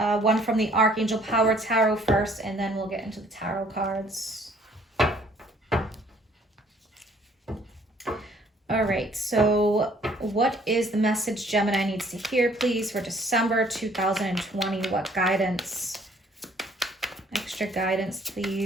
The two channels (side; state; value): both; normal; correlation 0.60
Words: one from the Archangel Power Tarot first, and then we'll get into the tarot cards. All right, so what is the message Gemini needs to hear, please, for December 2020? What guidance? Extra guidance,